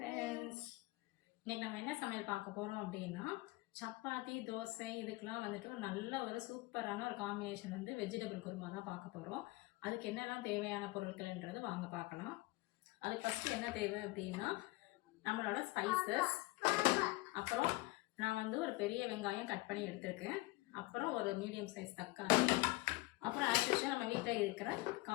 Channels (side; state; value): right; quieter; 21.1 dB